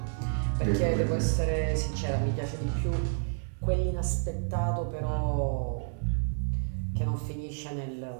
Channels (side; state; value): left; silent; digital silence